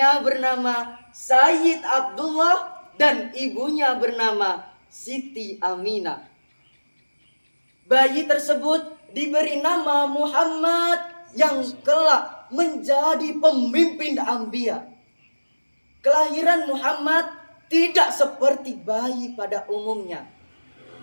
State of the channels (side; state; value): both; inverted; correlation -1.00